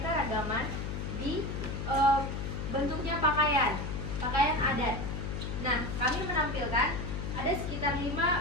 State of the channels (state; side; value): noise; left; hum, 4 dB below the sound